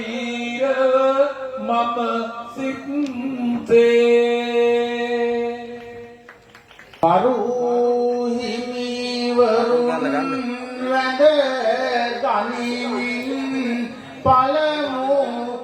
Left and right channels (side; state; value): both; identical; correlation 1.00